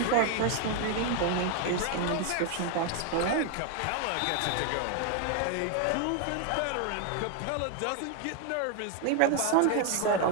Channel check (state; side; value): different; both; correlation 0.01